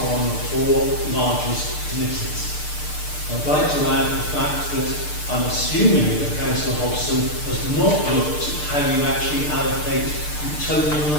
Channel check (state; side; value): late; right; 6.7 ms